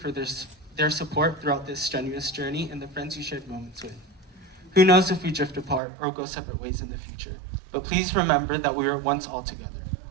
their support throughout this strenuous journey and the friends you shared moments with. Who knows if we drift apart or go separate ways in the future, but please remember that we were once all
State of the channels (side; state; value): left; drops out; at 5.8 s